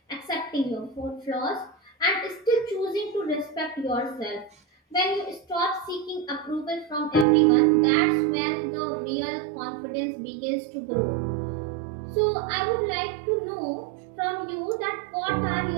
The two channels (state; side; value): drops out; left; at 7.2 s